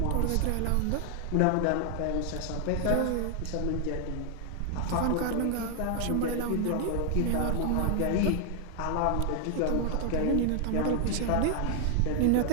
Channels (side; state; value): both; different; correlation 0.00